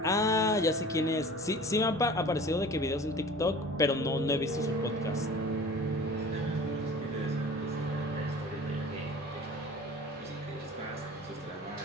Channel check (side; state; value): both; normal; correlation 0.42